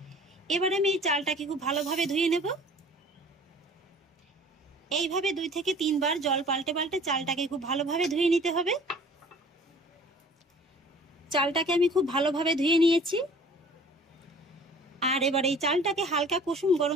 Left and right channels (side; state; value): both; normal; correlation 0.49